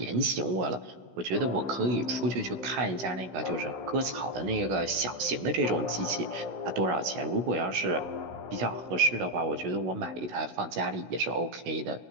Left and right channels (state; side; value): late; left; 16 ms